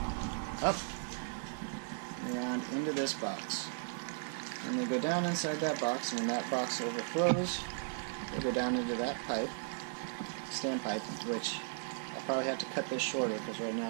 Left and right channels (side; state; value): left; silent; 54 dB below the other